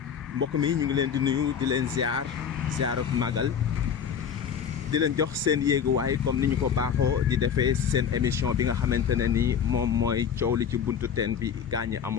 Mbokk mi ñu ngi leen di nuyu di leen ziar ak magal di leen jox seen yéeguwaay comme ni ñu ko baaxoo di defee seen émission bi nga xamante ne ni moom mooy coow li ci buntu teen bi gaañi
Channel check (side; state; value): right; quieter; 7.7 dB